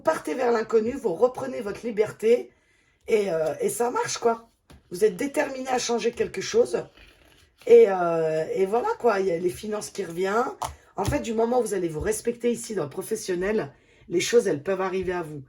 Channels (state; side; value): identical; both; correlation 1.00